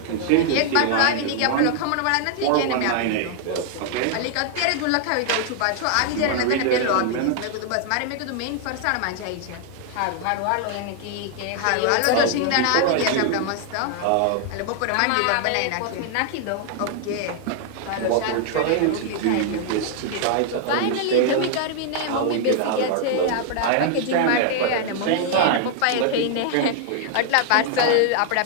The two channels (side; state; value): both; different; correlation 0.00